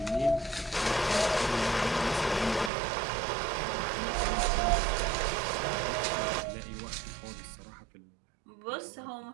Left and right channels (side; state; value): left; drops out; at 2.7 s